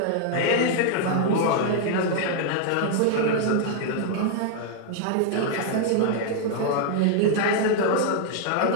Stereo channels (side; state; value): both; different; correlation 0.00